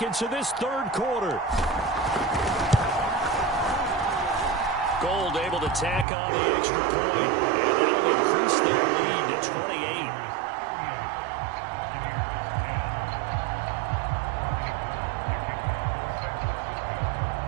of this third quarter. Gold able to tack on the extra point. And that'll increase their lead to 28.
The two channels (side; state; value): left; drops out; at 6.1 s